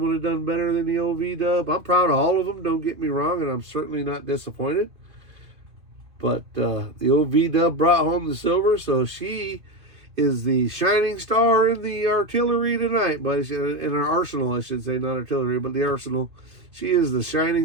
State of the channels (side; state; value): left; late; 2.5 ms